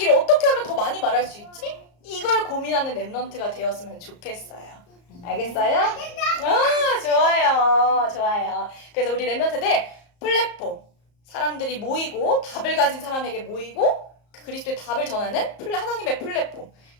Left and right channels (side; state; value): right; late; 34 ms